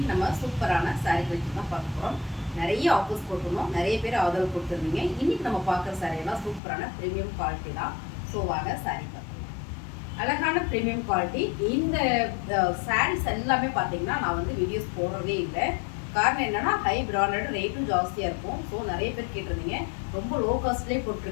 நம்ம சூப்பரான சாரீ கலெக்ஷன் தான் பார்க்க போகிறோம். நிறைய ஆஃபர்ஸ் போட்டிருந்தோம், நிறைய பேர் ஆதரவு கொடுத்துருந்தீங்க. இன்னைக்கு நம்ம பார்க்குற சாரியெல்லாம் சூப்பரான ப்ரீமியம் குவாலிட்டி தான். ஸோ வாங்க சாரீ பார்க்கலாம். அழகான ப்ரீமியம் குவாலிட்டி. இந்த சாரீஸ் எல்லாமே பார்த்தீங்கன்னா நான் வந்து வீடியோஸ் போடுறதே இல்லை. காரணம் என்னன்னா ஹை பிராண்டட், ரேட்டும் ஜாஸ்தியாக இருக்கும். ஸோ நிறைய பேர் கேட்டிருந்தீங்க, ரொம்ப லோ காஸ்ட்லேயே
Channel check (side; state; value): right; drops out; at 6.6 s